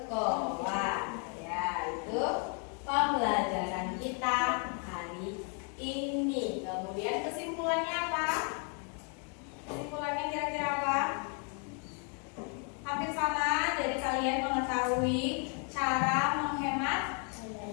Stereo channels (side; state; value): right; quieter; 39.9 dB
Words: Ya, itu pembelajaran kita hari ini. Kemudian kesimpulannya apa? Kesimpulannya kira-kira apa? Hampir sama, jadi kalian mengetahui cara menghemat